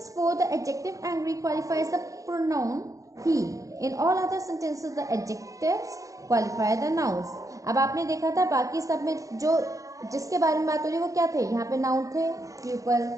4, the adjective angry qualifies the pronoun he. In all other sentences, the adjectives qualify the nouns. अब आपने देखा था बाकी सब में जो जिसके बारे में बात हो रही है वो क्या थे, यहाँ पे नाउन थे, pupil,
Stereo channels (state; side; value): late; left; 0.16 ms